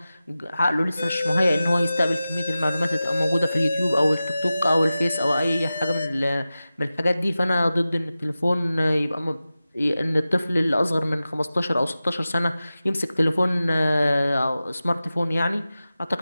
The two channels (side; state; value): both; inverted; correlation -0.95